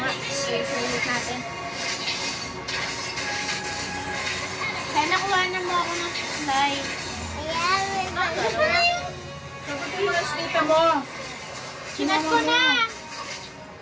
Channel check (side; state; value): both; identical; correlation 1.00